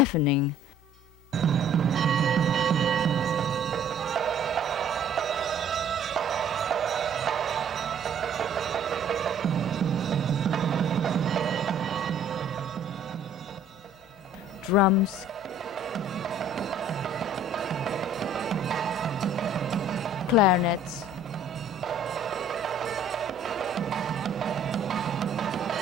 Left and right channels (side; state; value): left; noise; hum, 27 dB below the sound